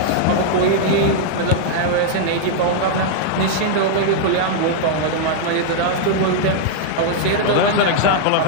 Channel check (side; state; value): both; different; correlation -0.01